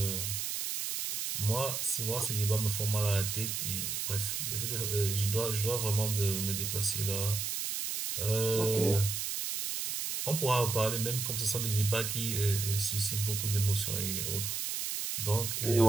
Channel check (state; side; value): noise; right; hiss, 2 dB below the sound